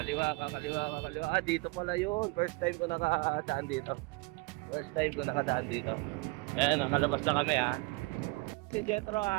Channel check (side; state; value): left; quieter; 26.2 dB